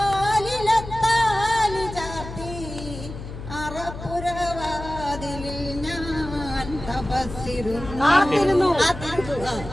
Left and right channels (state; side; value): noise; left; hum, 10 dB below the sound